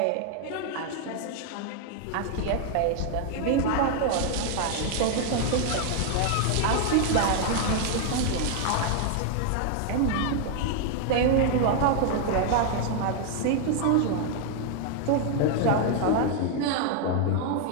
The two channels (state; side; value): different; both; correlation 0.00